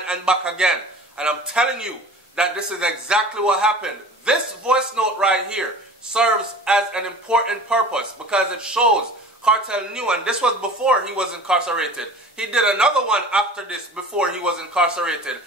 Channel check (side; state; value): both; normal; correlation 0.41